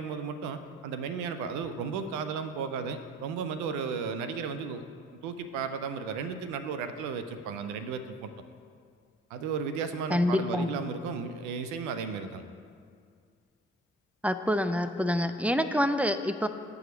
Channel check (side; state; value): both; normal; correlation 0.54